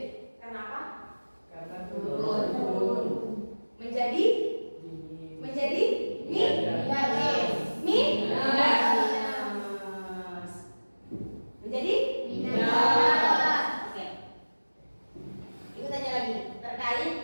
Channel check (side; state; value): both; inverted; correlation -1.00